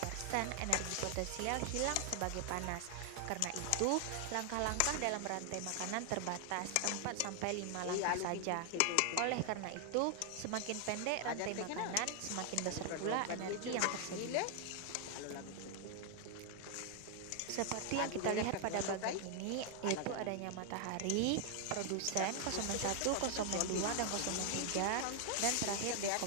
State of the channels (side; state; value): both; different; correlation 0.00